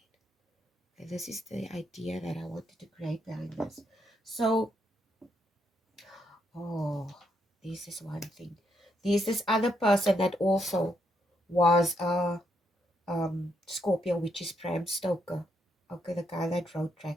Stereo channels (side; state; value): both; normal; correlation 0.77